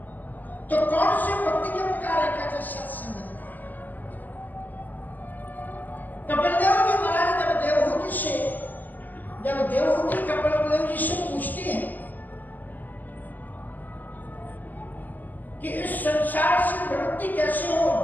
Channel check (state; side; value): late; right; 0.084 ms